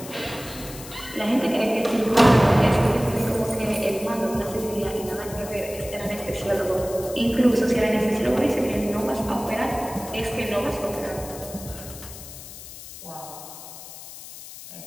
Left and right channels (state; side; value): noise; left; hiss, 14 dB below the sound